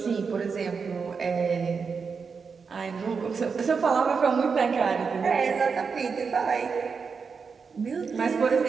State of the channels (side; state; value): left; quieter; 5.5 dB